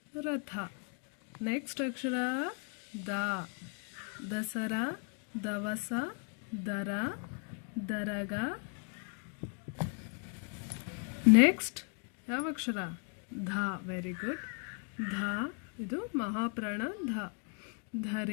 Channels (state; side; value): quieter; right; 38.9 dB